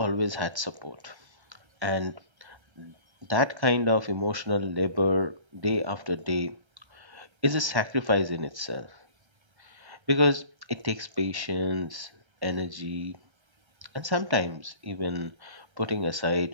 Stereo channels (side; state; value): left; late; 1.3 ms